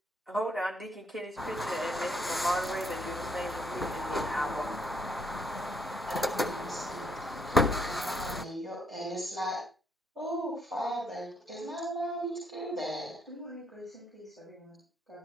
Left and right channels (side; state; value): both; normal; correlation 0.71